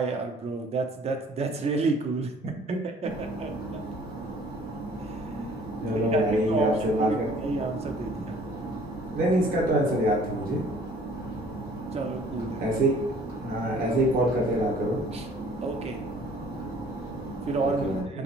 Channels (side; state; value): both; normal; correlation 0.54